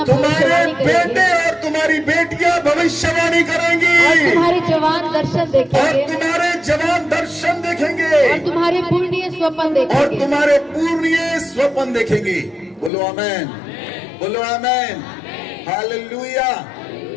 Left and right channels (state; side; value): drops out; right; at 12.9 s